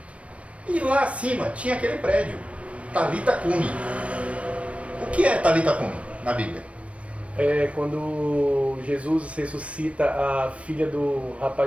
E lá acima tinha aquele prédio, Talitha Cumi. O que é Talitha Cumi na Bíblia? É quando Jesus ressuscita a filha do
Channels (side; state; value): left; late; 0.063 ms